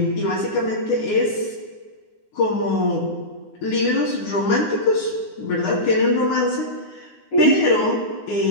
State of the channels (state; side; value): late; right; 9.7 ms